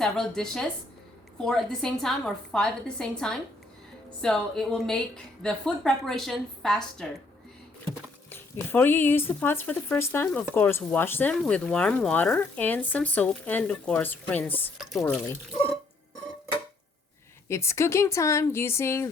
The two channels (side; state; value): right; quieter; 3.2 dB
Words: dishes, 4 at the same time or 5 at the same time. So it will make the food preparation faster. Before you use the pots for the first time, of course, wash them with warm water and some soap, and of course, rinse thoroughly. It's cooking time using